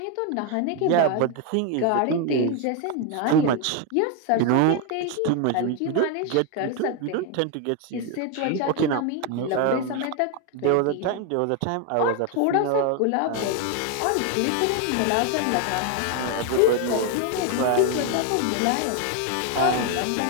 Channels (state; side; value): different; both; correlation 0.01